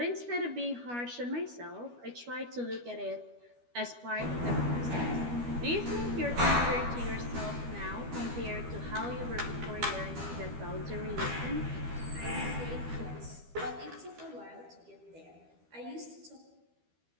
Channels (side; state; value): left; late; 12 ms